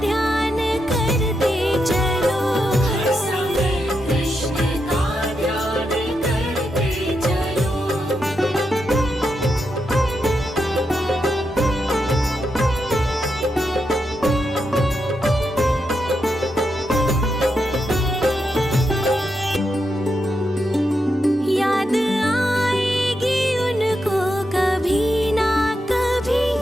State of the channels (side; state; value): both; normal; correlation 0.84